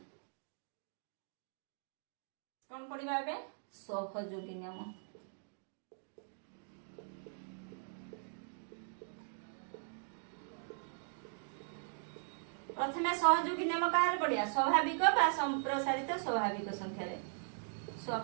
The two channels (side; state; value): left; silent; digital silence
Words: कोन पढिबा एबे सहयोगी नियम प्रथमे सहयोगी नियम काहर पढिया स्वाभाविक बा संप्रसारित स्वाभाविक संख्या रे